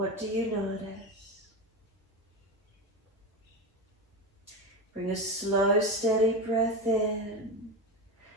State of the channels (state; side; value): normal; both; correlation 0.19